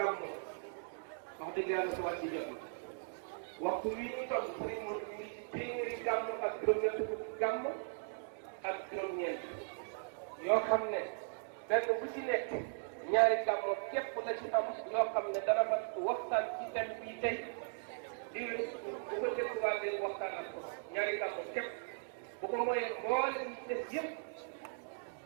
wax dëgg yàlla su wàcc jot waxtu wi ñu toll sëriñ Modou mi ngi ci téeméeri gàmmo ak juróom-ñett fukk gàmmo ak juróom-ñeent yoo xam ne benn bu ci nekk ñaari gàmmo képp la ci am yoo xam ne dana mat waxtaan ci thème bii tey di bu ko dégluwaatee waxtaan ak ko ñaari gàmmo képp bu ko mooyee mboolem ñi des yëpp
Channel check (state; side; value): silent; left; digital silence